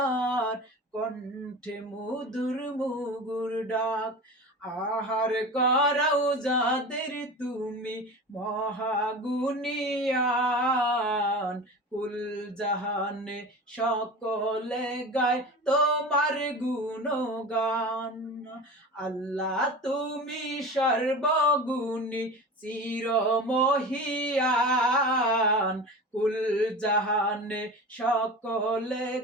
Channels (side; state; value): both; normal; correlation 0.33